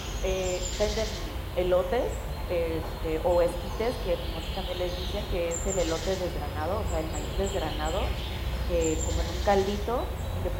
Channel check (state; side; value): identical; both; correlation 1.00